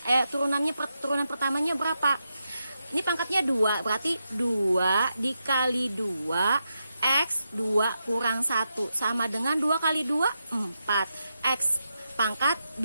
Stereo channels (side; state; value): both; inverted; correlation -0.86